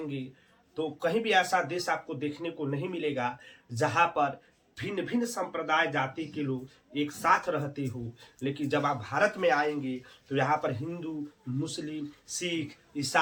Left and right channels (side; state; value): both; identical; correlation 1.00